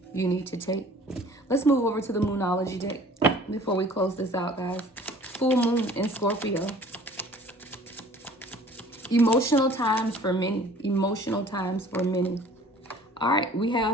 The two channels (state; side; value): normal; both; correlation 0.50